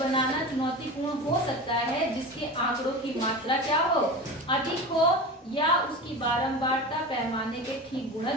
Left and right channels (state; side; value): normal; both; correlation 0.29